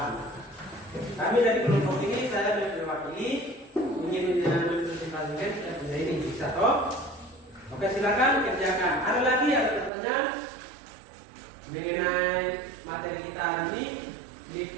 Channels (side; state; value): left; drops out; at 9.9 s